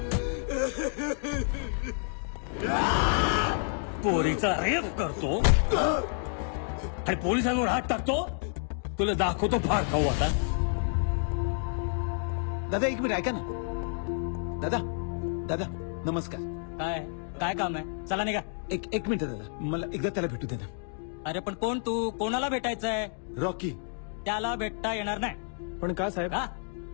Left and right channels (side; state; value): right; silent; 58 dB below the other